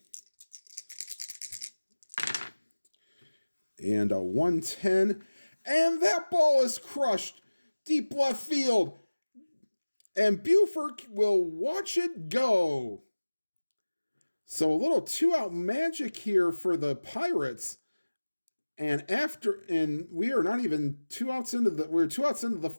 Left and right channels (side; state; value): both; inverted; correlation -1.00